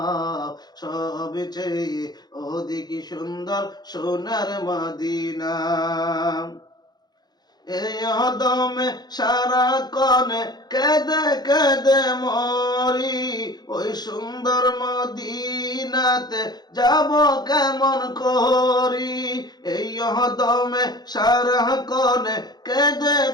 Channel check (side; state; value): right; late; 0.20 ms